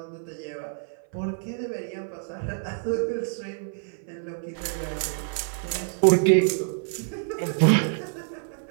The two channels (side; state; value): left; silent; 55 dB below the other